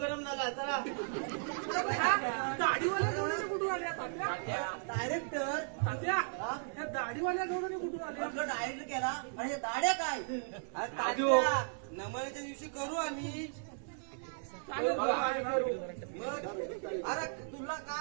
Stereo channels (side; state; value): left; silent; 54 dB below the other